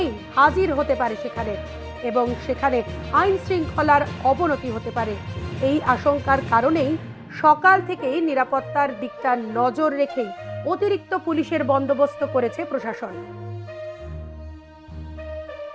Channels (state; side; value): identical; both; correlation 1.00